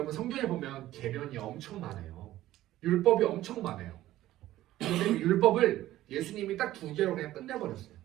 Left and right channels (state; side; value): quieter; left; 14.7 dB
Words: 성경에 보면 계명이 엄청 많아요. 율법이 엄청 많아요. 그런데 율법을 예수님이 딱 2개로 그냥 끝내버렸어요.